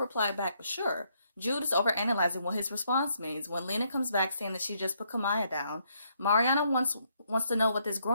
back with sure. Jude is overanalyzing what his response means when Lena comes back saying that she just put Kamaya down. Mariana wants to know what this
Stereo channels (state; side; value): inverted; both; correlation -0.73